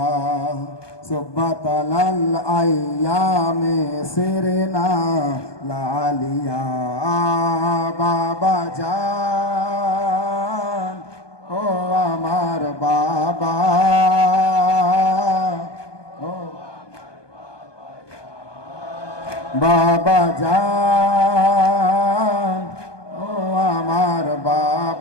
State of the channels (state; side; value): late; right; 1.2 ms